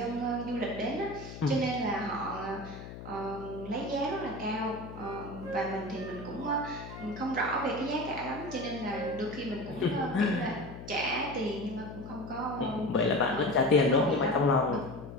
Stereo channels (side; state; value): left; noise; hum, 12 dB below the sound